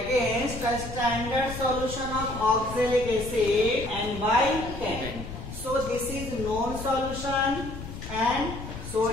against the standard solution of oxalic acid and by 10. So this is known solution and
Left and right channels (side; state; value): left; noise; rumble, 10 dB below the sound